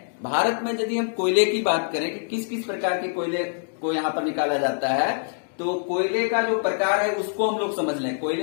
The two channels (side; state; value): right; silent; digital silence